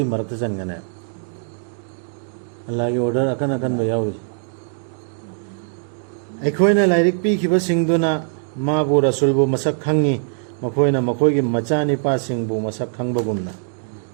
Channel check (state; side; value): silent; left; digital silence